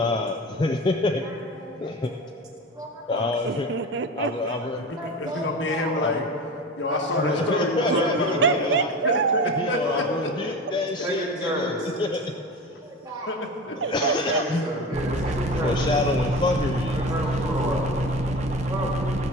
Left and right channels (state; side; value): normal; both; correlation 0.30